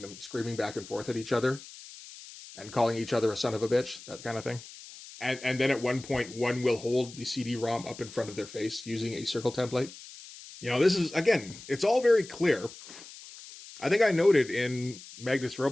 them screaming back and forth at each other and calling each other a son of a bitch, that kind of thing. And then at one point, one will hold the CD-ROM up in front of their face using a circle template. This is, again, it's all very clear. I think I noted in Magnus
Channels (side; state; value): left; noise; hiss, 16 dB below the sound